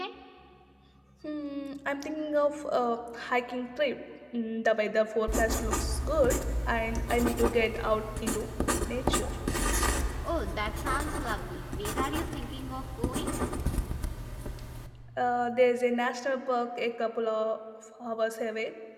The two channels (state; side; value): identical; both; correlation 1.00